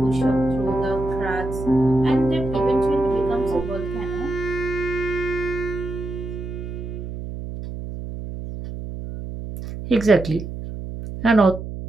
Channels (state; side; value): noise; right; hum, 8 dB below the sound